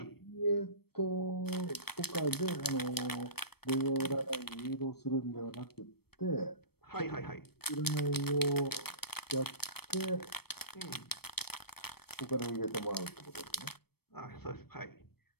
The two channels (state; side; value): late; right; 0.96 ms